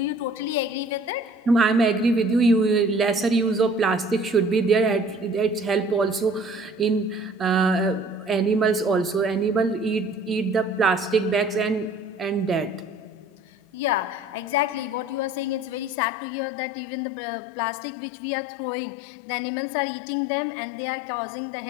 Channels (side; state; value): right; drops out; at 16.0 s